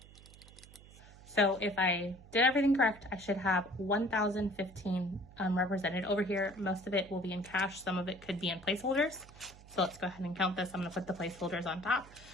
if I did everything correct, I should have 1,015 represented over here. Most of it will be in cash. Some of it could be in placeholders. So let's go ahead and count this. I'm going to put the placeholders on top,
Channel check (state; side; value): noise; right; hum, 20 dB below the sound